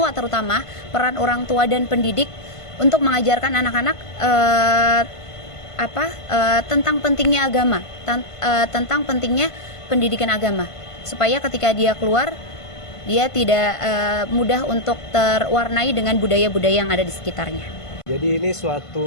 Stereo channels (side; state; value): right; late; 1.5 ms